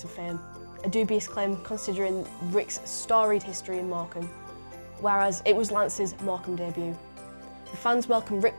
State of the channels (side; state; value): both; inverted; correlation -1.00